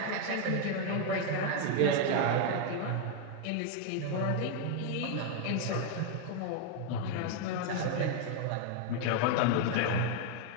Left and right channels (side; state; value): both; different; correlation 0.01